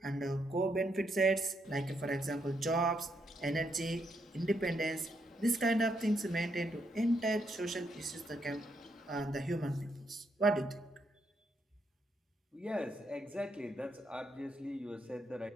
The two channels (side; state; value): both; normal; correlation 0.78